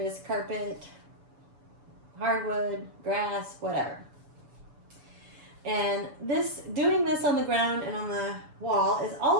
carpet, hardwood, grass, whatever. And doing this on the ground and on the wall is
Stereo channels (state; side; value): late; left; 7.0 ms